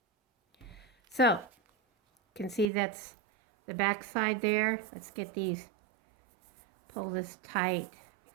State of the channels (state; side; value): drops out; left; at 2.7 s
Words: So, you can see that's the back side there. Let's get these, pull this tight